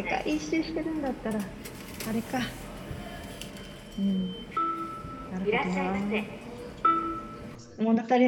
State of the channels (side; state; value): both; identical; correlation 1.00